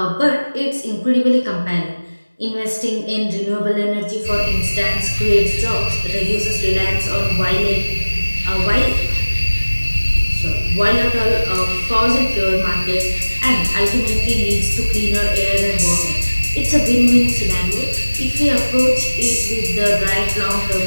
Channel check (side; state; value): both; inverted; correlation -1.00